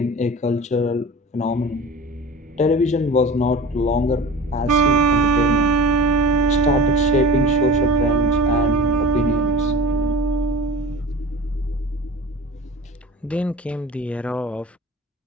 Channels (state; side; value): normal; both; correlation 0.37